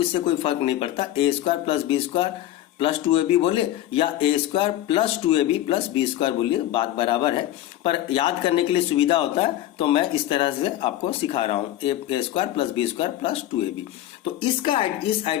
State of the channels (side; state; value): right; quieter; 13.5 dB